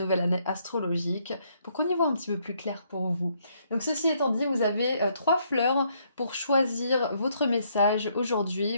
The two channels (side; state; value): both; inverted; correlation -0.71